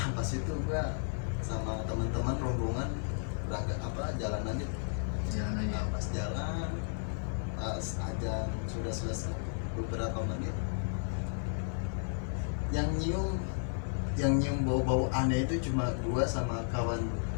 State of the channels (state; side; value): silent; right; 55 dB below the other